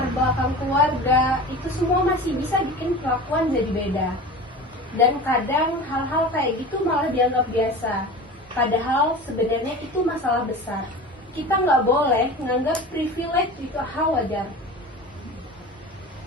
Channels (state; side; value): normal; both; correlation 0.34